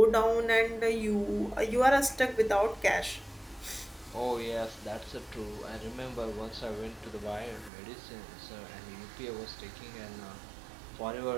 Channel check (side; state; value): left; drops out; at 7.7 s